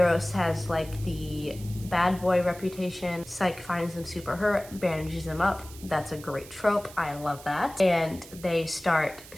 has like the bad boy reputation. Psyche finds him super hurt, bandages him up. That's a great trope. I love that. And they start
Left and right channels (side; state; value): right; noise; hiss, 18 dB below the sound